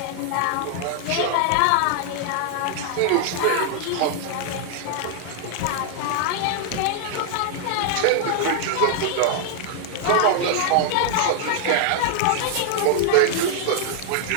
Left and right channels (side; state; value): both; different; correlation 0.00